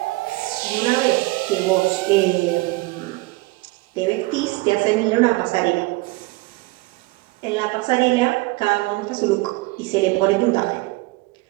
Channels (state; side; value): quieter; left; 22.1 dB